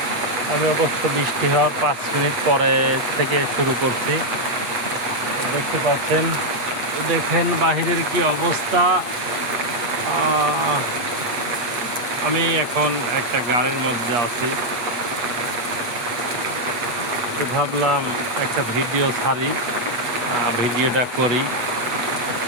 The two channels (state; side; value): late; left; 8.4 ms